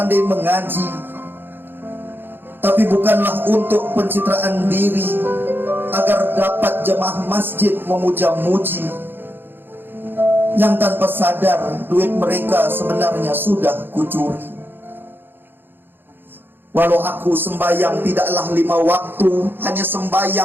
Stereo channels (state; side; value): late; left; 0.099 ms